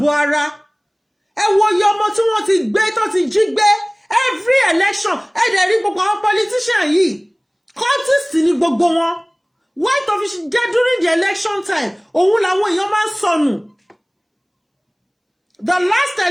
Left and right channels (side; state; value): both; identical; correlation 1.00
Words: ara. Ẹ wo iye ọmọ tí wọ́n ti gbé, tó ti jí gbé. Every election, ẹ dẹ̀ rí gbogbo àwọn politician yìí. Cultist ni gbogbo wọn. White official jẹ́ during the election time. Òun làwọn èèyàn máa ń sọnù. The last